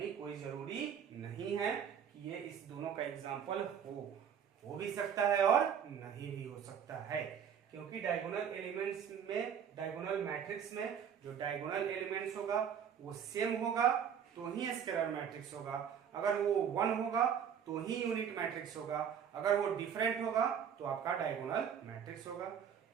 कोई जरूरी नहीं है कि ये इस दोनों का एग्जांपल हो भी सकता है और नहीं भी हो सकता है, क्योंकि डायगोनल एलिमेंट्स में, डायगोनल मैट्रिक्स में जो डायगोनल एलिमेंट्स होगा वो सेम होगा तो ही स्केलर मैट्रिक्स होगा, अगर वो 1 होगा तो ही यूनिट मैट्रिक्स होगा, अगर वो डिफरेंट होगा तो आपका डायगोनल मैट्रिक्स होगा।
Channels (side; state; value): left; quieter; 8.1 dB